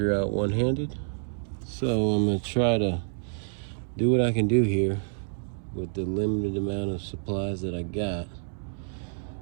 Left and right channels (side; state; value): left; silent; 59 dB below the other